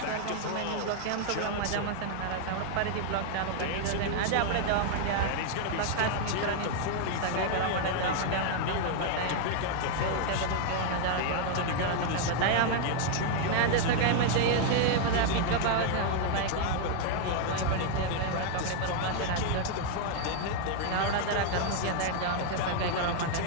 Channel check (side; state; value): both; different; correlation 0.00